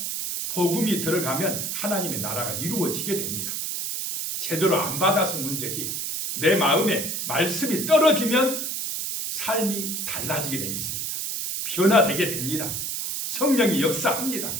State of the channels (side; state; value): right; noise; hiss, 3 dB below the sound